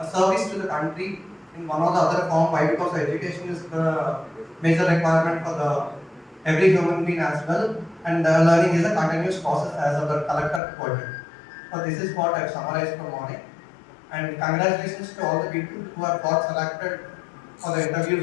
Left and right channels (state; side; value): drops out; right; at 10.6 s